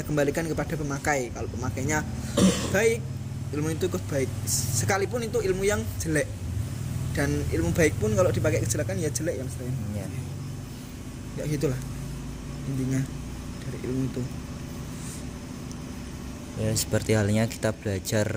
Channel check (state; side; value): identical; both; correlation 1.00